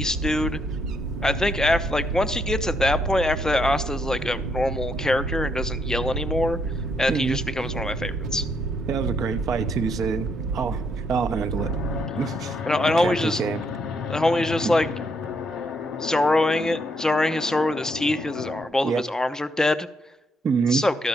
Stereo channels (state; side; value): normal; both; correlation 0.74